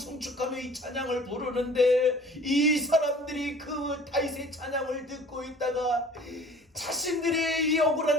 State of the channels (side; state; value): both; normal; correlation 0.48